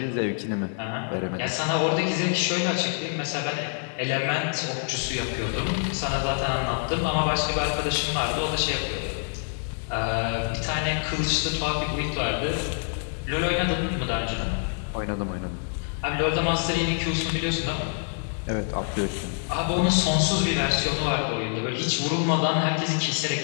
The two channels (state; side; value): silent; right; 55 dB below the other